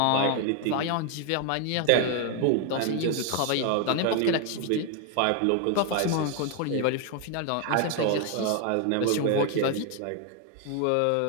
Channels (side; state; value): both; different; correlation 0.01